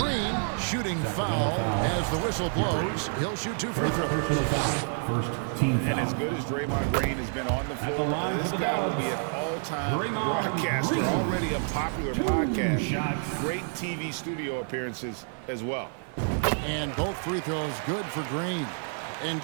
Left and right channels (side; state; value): left; silent; 57 dB below the other